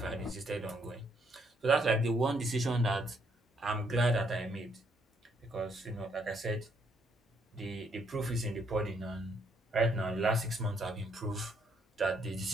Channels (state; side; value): normal; both; correlation 0.71